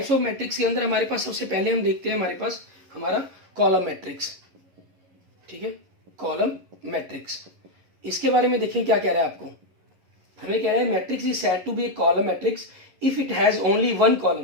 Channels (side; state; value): left; late; 11 ms